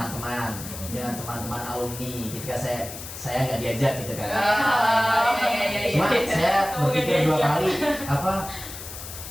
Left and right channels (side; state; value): left; noise; hiss, 11 dB below the sound